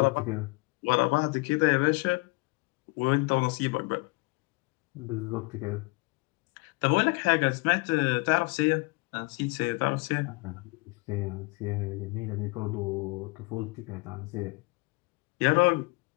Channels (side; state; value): right; quieter; 27.4 dB